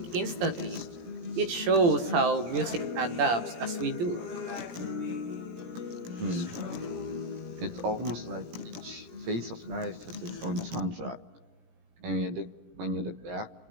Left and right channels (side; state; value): left; late; 17 ms